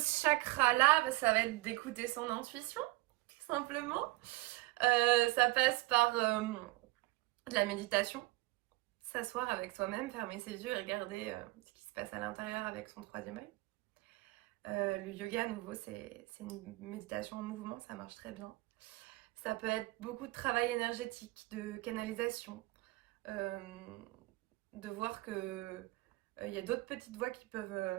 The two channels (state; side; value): quieter; left; 21.4 dB